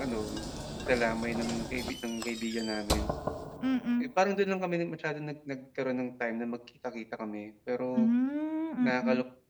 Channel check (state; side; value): identical; both; correlation 1.00